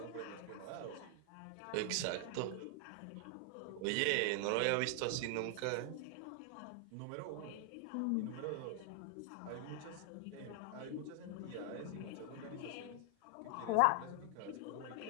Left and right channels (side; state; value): both; different; correlation 0.00